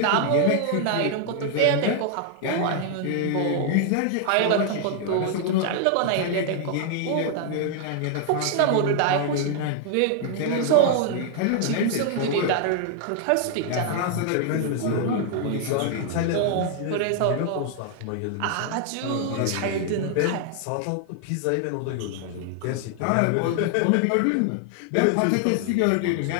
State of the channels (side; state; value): both; different; correlation 0.00